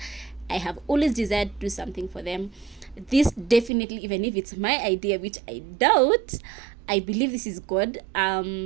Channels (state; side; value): drops out; left; at 3.7 s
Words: I have always desired to do something for them. This definitely, even if it's my idea, which I doubt, I believe this is God,